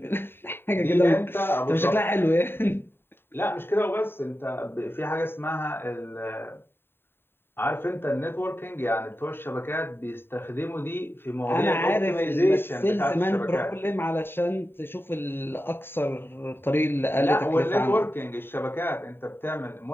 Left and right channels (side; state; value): right; late; 0.11 ms